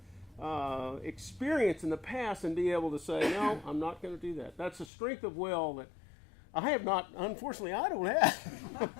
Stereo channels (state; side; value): drops out; right; at 4.9 s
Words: experience in the past and be able to say, no, I'm not going to do that. That's a strength of will that I have not. Unfortunately, I don't